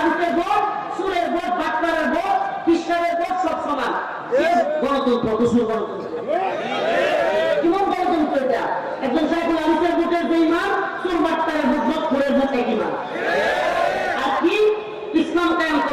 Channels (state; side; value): identical; both; correlation 1.00